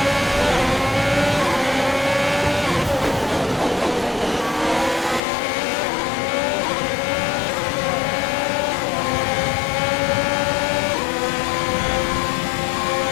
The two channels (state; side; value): drops out; right; at 5.2 s